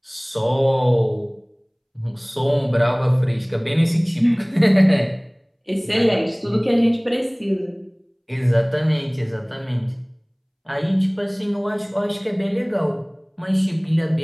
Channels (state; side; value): identical; both; correlation 1.00